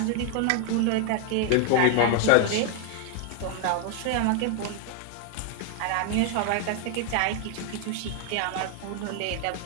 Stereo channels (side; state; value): both; different; correlation 0.00